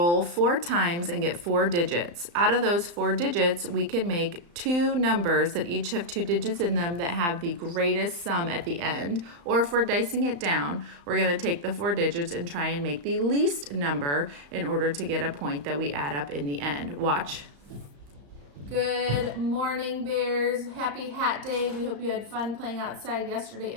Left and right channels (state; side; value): late; left; 35 ms